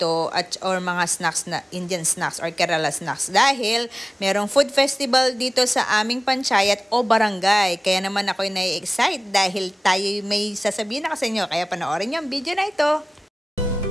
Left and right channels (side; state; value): both; normal; correlation 0.98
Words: or mga snacks na Indian snacks or Kerala snacks. Dahil merong food festival dito sa aming panchayat o barangay. Kaya naman ako'y nai-excite dahil tayo may sasabihin na sa inyo. Kaya panoorin niyo ang video na ito.